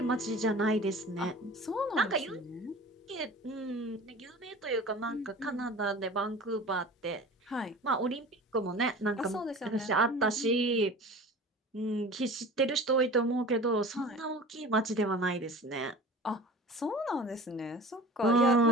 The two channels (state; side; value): normal; both; correlation 0.39